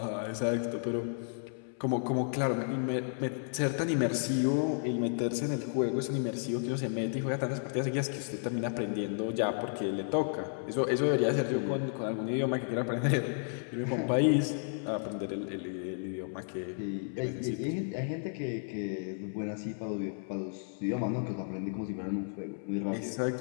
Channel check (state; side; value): silent; right; 56 dB below the other